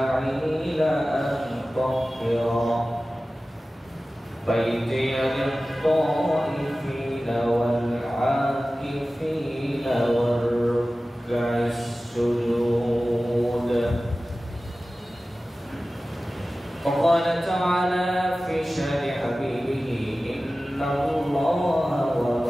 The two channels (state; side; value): normal; both; correlation 0.96